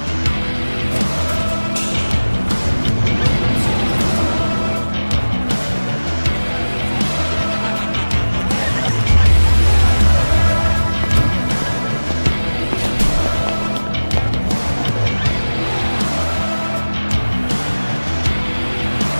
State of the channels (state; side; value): inverted; both; correlation -1.00